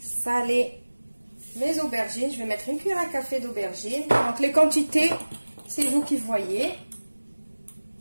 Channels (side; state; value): both; inverted; correlation -1.00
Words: mes aubergines. Je vais mettre une cuillère à café d'aubergines. Donc les quantités, c'est vous qui voyez.